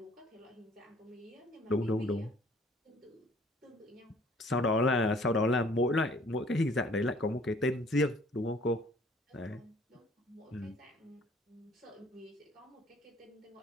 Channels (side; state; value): both; normal; correlation 0.56